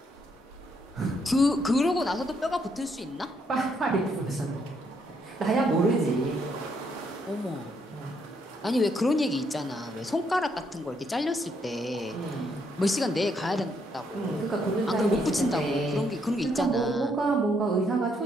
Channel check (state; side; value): normal; both; correlation 0.74